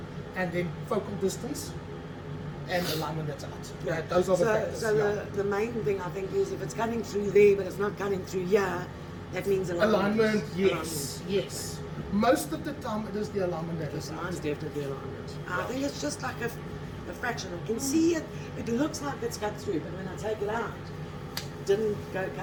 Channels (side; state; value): both; identical; correlation 1.00